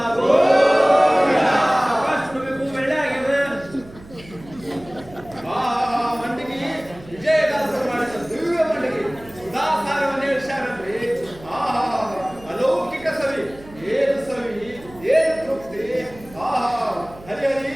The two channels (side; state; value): right; noise; hum, 20 dB below the sound